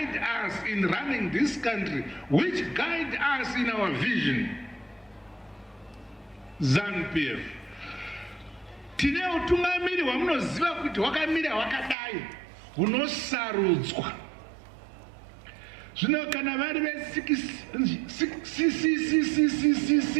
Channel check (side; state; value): left; drops out; at 12.0 s